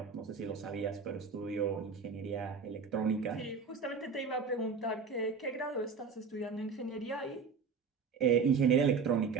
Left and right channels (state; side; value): quieter; left; 5.4 dB